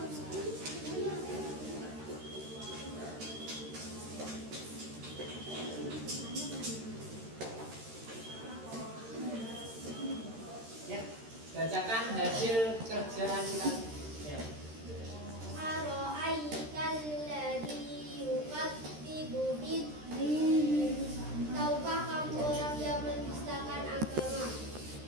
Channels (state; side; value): late; left; 13 ms